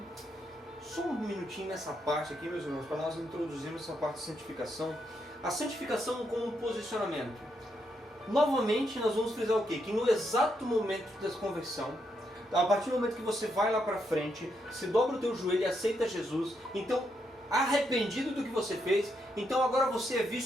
Só um minutinho nessa parte aqui, meus irmãos, para nós introduzirmos essa parte de santificação. A santificação como um posicionamento. Novamente, nós vamos frisar o quê? Que no exato momento da conversão, a partir do momento que você vai lá para frente, se dobra o teu joelho e aceita Jesus, então, arrependido do que você fez, então agora você é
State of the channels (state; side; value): normal; both; correlation 0.79